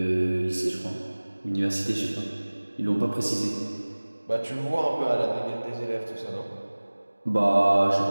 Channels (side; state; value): both; inverted; correlation -1.00